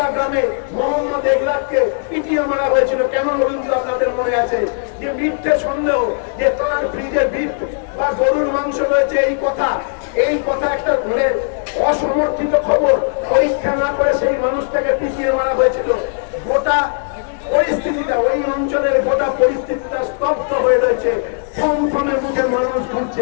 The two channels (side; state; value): right; silent; digital silence